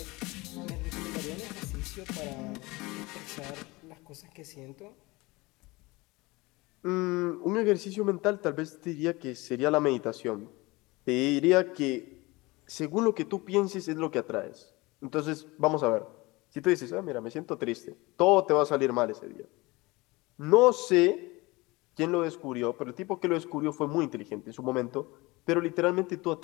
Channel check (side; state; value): right; quieter; 22.7 dB